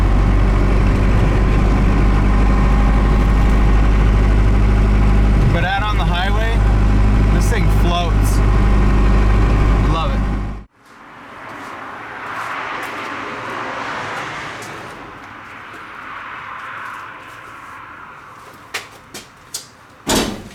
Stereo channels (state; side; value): identical; both; correlation 1.00